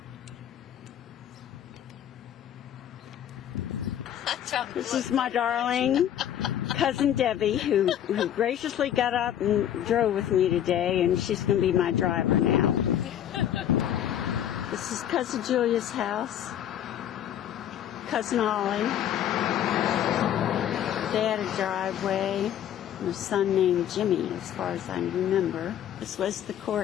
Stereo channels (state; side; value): quieter; right; 10.5 dB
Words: This is my darling cousin Debbie, who graciously got up and drove with me today, and she's going to be my driver now. This is cousin Julia's house, cousin Ollie. They had a driveway, and a son named Jimmy, as far as I remember. This was the